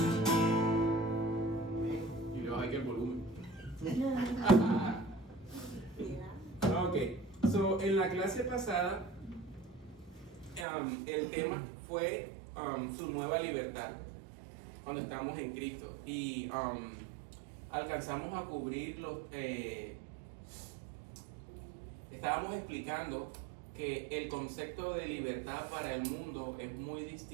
Y le baja aquí el volumen. Ok, so en la clase pasada el tema fue su nueva libertad cuando estamos en Cristo y alcanzamos a cubrir estábamos explicando que el concepto de libertad para el mundo es muy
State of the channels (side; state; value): left; drops out; at 10.7 s